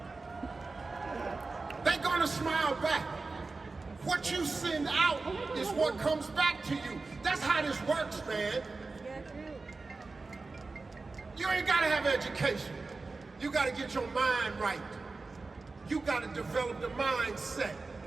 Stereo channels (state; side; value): quieter; left; 3.8 dB